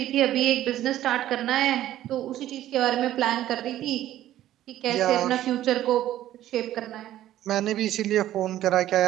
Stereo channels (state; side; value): quieter; left; 13.2 dB